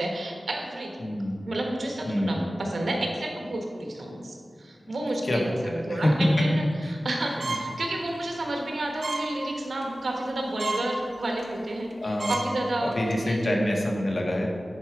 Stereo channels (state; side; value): normal; both; correlation 0.95